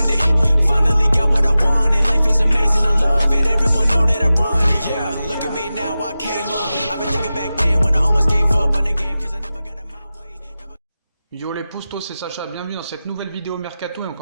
Finally got what I wanted. Life is amazing, I love it. Everyone know that I run it. Yeah, look at me now, I came up. I've been thinking back then when I almost gave up on the game cause I never got in my way. Yo les postos, c'est Sacha, bienvenue dans cette nouvelle vidéo Mercato et on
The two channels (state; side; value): inverted; both; correlation -0.94